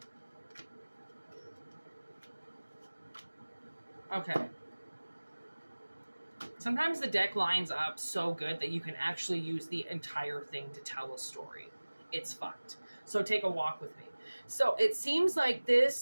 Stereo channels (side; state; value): both; inverted; correlation -1.00